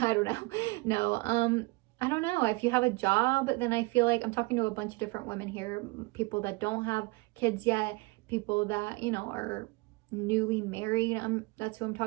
don't know. No, I don't know. If you have a job, then I feel like I'm talking to a bunch of different women here, people that don't have kids yet, people that, you know, are newly married. That's who I'm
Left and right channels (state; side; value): quieter; left; 24.8 dB